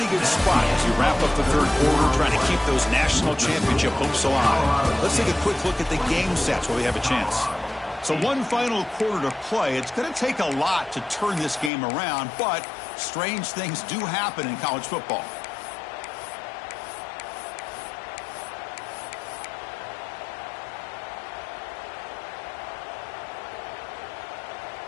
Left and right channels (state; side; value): drops out; right; at 11.7 s